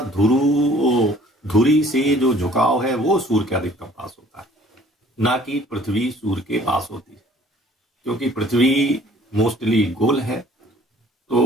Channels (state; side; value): normal; both; correlation 0.55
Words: धुरी से जो झुकाव है वो सूर्य के अधिकतम पास होता है, ना कि पृथ्वी सूर्य के पास होती है। क्योंकि पृथ्वी मोस्टली गोल है,